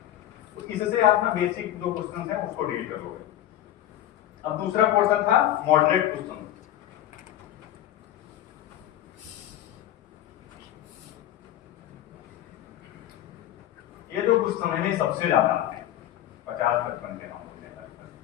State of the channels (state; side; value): quieter; right; 12.7 dB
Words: तो इससे आप ना बेसिक जो क्वेश्चन है उसको डील कर लोगे। अब दूसरा पोर्शन था मॉडरेट क्वेश्चन। ये जो क्वेश्चन है ना सबसे ज्यादा आते हैं, 50-55 के नंबर हैं।